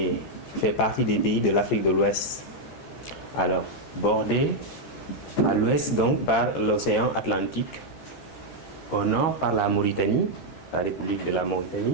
fait partie des pays de l'Afrique de l'Ouest. Alors, bordé à l'ouest donc par l'océan Atlantique, au nord par la Mauritanie, la République de la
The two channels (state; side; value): late; right; 13 ms